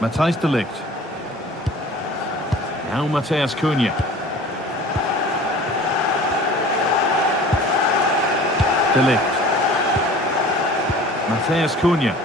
Matthijs de Ligt. Now Matheus Cunha. De Ligt. Matheus Cunha.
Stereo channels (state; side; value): normal; both; correlation 0.44